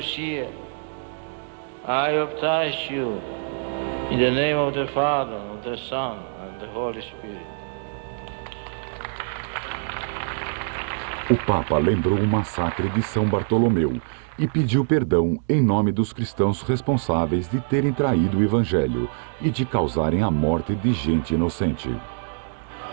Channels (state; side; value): silent; left; digital silence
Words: I baptize you in the name of the Father, of the Son, and the Holy Spirit. O Papa lembrou o massacre de São Bartolomeu e pediu perdão em nome dos cristãos responsáveis de terem traído o Evangelho e de causarem a morte de gente inocente.